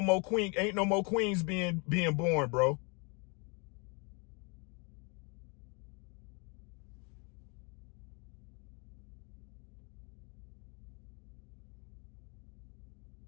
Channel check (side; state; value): right; quieter; 32.5 dB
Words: queens being born, bro.